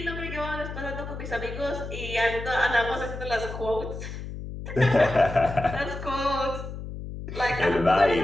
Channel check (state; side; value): noise; left; hum, 9 dB below the sound